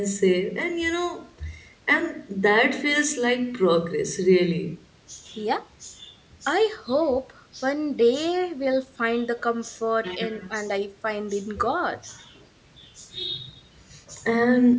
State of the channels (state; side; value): identical; both; correlation 1.00